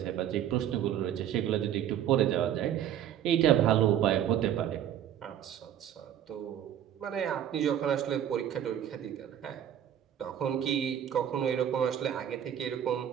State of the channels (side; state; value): left; quieter; 10.3 dB